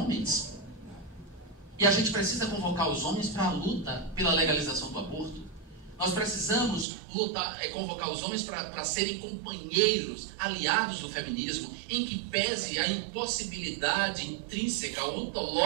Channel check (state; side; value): drops out; left; at 6.9 s